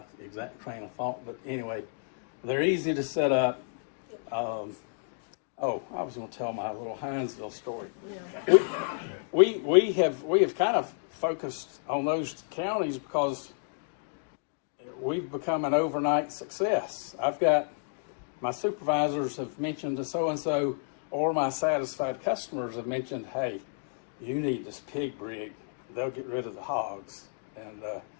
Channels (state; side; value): silent; right; digital silence